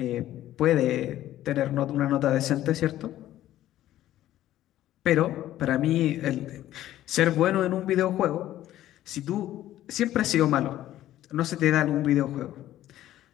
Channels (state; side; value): quieter; right; 13.5 dB